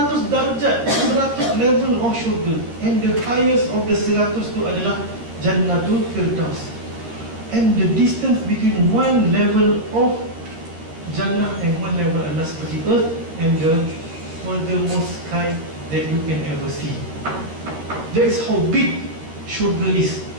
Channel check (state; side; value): late; left; 13 ms